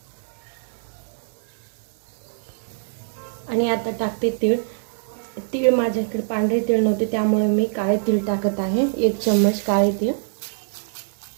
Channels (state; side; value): silent; left; digital silence